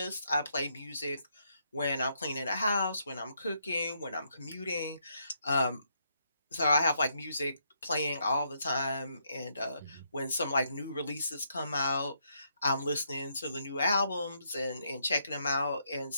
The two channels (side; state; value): both; inverted; correlation -0.76